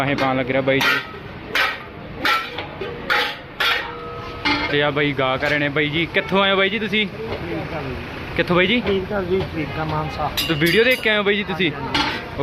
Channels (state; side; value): identical; both; correlation 1.00